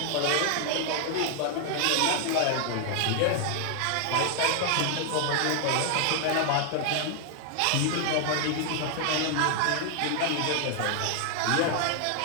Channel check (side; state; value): both; different; correlation 0.00